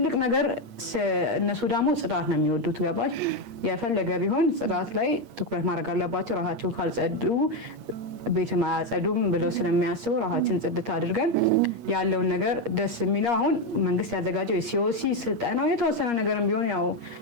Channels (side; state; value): left; late; 8.5 ms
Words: ነገር። እነሱ ደግሞ ጽዳት ነው የሚወዱት። ገባሽ? የፈለገ ቢሆን ጽዳት ላይ ትኩረት ማድረግ አለባቸው። ራሳቸው ካልጸዱ ቤት ማያጸዱም ብለው ስለሚያስቡ ራሳችን ጽድት አድርገን ያለውን ነገር ደስ የሚለው አሁን መንግስት ያዘጋጀው የሲኦሲ ስልጠናው የተወሰነ ነገርም ቢሆን ያው